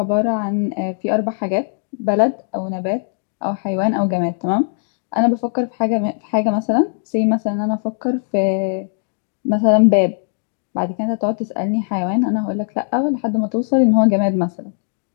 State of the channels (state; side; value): silent; right; digital silence